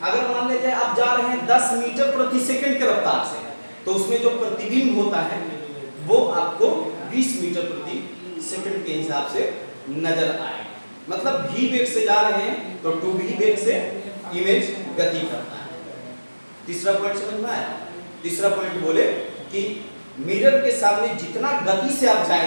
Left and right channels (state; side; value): inverted; both; correlation -1.00